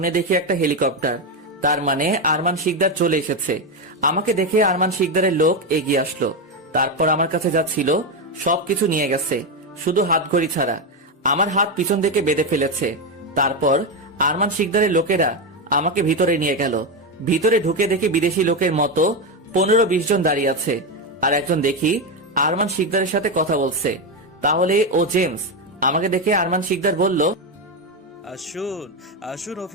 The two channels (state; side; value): normal; both; correlation 0.10